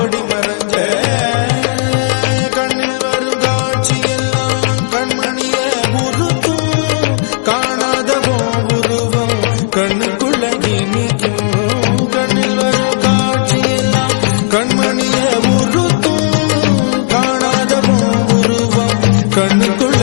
மறைஞ்ச கண்ணில் வரும் காட்சி எல்லாம் கண்மணிய உருத்தும் காணாதவோ உருவம் கண்ணு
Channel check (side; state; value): right; silent; digital silence